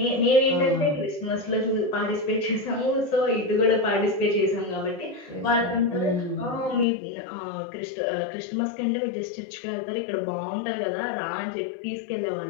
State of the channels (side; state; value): right; drops out; at 6.9 s